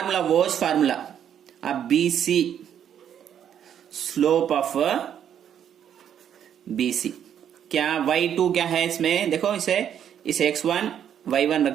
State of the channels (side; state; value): left; quieter; 9.3 dB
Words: वॉज फार्मूला। अब BC, स्लोप ऑफ BC क्या, y2 क्या है इसमें देखो, इसे x1 y1 रख